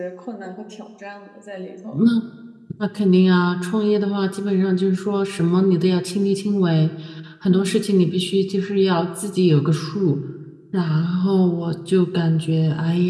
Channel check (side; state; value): both; identical; correlation 1.00